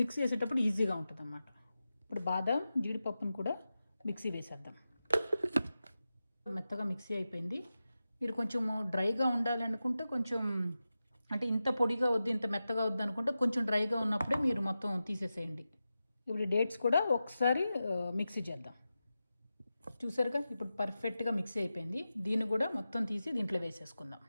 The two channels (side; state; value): both; inverted; correlation -0.93